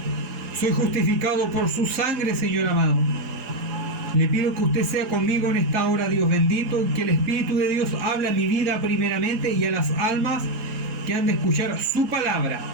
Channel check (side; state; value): left; late; 4.9 ms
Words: Soy justificado por su sangre, Señor amado. Le pido que usted sea conmigo en esta hora, Dios bendito, que el Espíritu de Dios hable a mi vida primeramente y a las almas que han de escuchar su palabra,